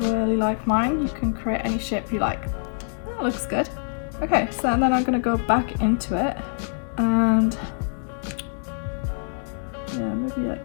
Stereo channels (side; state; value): right; silent; 62 dB below the other